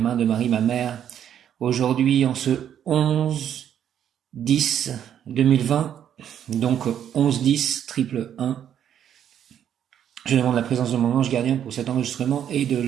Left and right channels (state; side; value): quieter; left; 9.6 dB